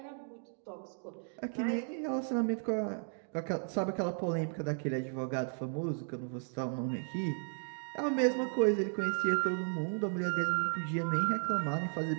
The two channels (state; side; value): silent; left; 55 dB below the other